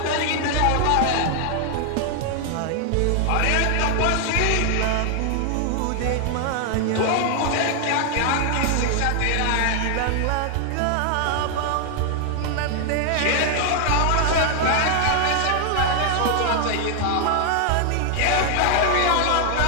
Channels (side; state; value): both; different; correlation 0.00